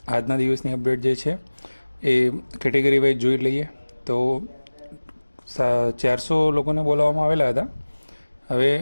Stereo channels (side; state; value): both; inverted; correlation -1.00